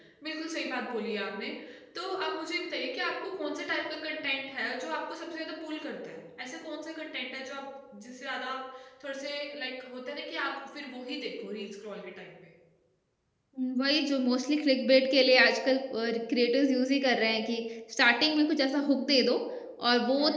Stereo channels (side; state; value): both; identical; correlation 1.00